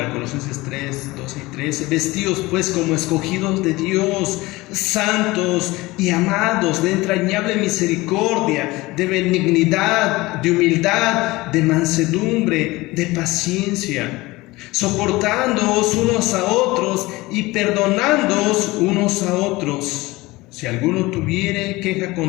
Colosenses 3, 12 y 13, vestidos pues como escogidos de Dios, santos y amados, de entrañable misericordia, de benignidad, de humildad, de mansedumbre, de paciencia, soportándoos unos a otros y perdonándoos unos a otros. Si alguno tuviere queja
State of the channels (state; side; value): quieter; right; 20.7 dB